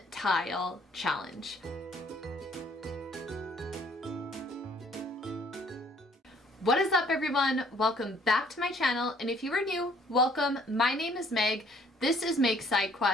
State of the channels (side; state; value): both; normal; correlation 0.60